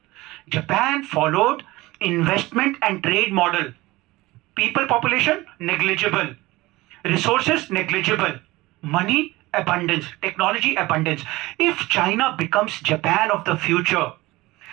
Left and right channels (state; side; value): quieter; left; 19.8 dB